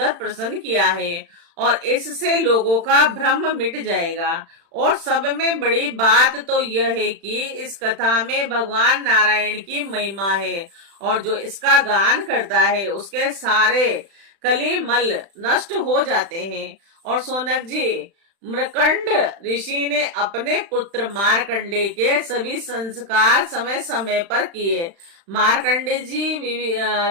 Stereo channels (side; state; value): left; late; 36 ms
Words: प्रश्न किया है, और इससे लोगों का भ्रम मिट जाएगा। और सब में बड़ी बात तो यह है कि इस कथा में भगवान नारायण की महिमा है, और जो इसका गान करता है उसके सारे कलिमल नष्ट हो जाते हैं। और सोनक जी, मृकंड ऋषि ने अपने पुत्र मार्कंडे के सभी संस्कार समय समय पर किए। मार्कंडे जी